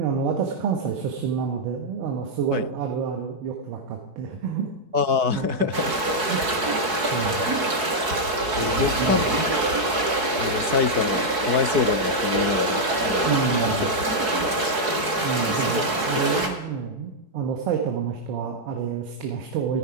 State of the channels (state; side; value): late; left; 4.6 ms